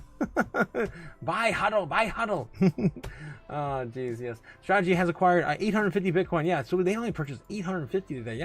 Buy huddle. Oh, geez, yes. Strategy has acquired 850 Bitcoin. Yeah, so they only purchased 850 today.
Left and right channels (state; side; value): identical; both; correlation 1.00